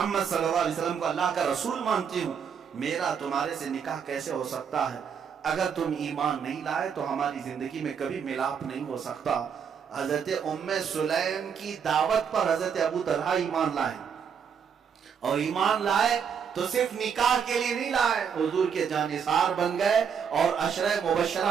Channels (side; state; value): left; quieter; 7.1 dB